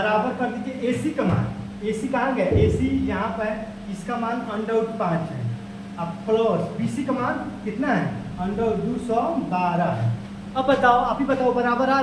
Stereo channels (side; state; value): both; identical; correlation 1.00